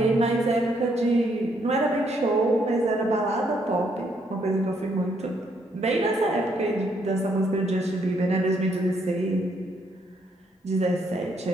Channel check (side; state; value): both; normal; correlation 0.72